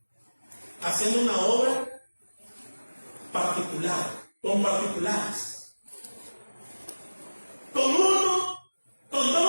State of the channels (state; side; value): inverted; both; correlation -1.00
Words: haciendo una obra particular, con particulares. Con uno, con